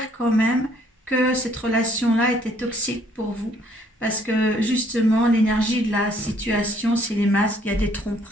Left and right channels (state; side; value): normal; both; correlation 0.64